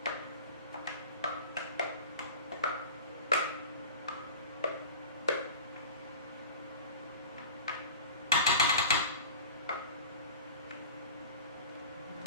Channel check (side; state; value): both; inverted; correlation -0.38